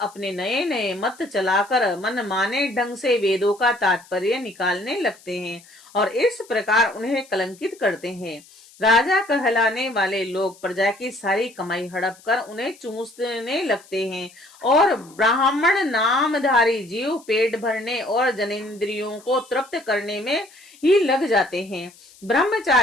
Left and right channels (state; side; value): noise; left; hiss, 25 dB below the sound